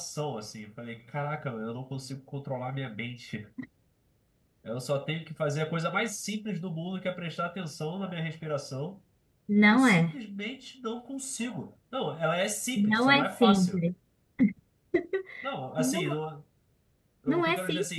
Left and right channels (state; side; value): identical; both; correlation 1.00